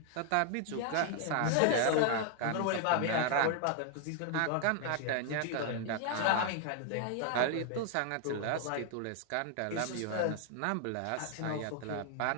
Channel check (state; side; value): different; both; correlation 0.00